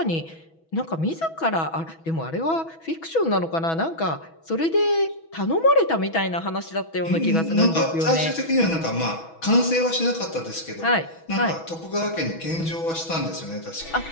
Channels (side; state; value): right; late; 6.1 ms